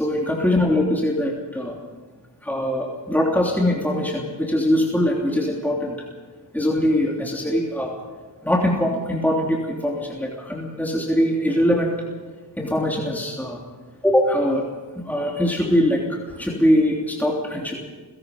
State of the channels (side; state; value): both; normal; correlation 0.70